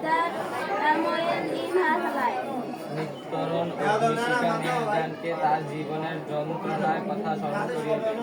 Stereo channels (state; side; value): identical; both; correlation 1.00